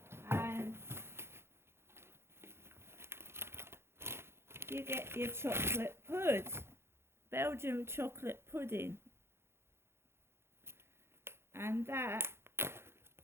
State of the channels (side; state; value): left; late; 0.12 ms